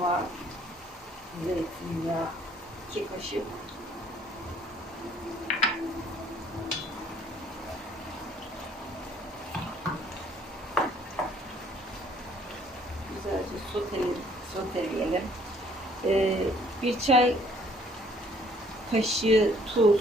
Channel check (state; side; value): normal; both; correlation 0.61